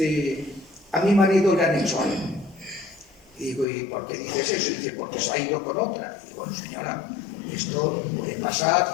a mi marido le han hecho algo. Y digo, ¿y por qué dices eso? Y dice, porque se ha ido con otra. Y digo, bueno, señora, esto puede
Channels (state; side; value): drops out; right; at 3.7 s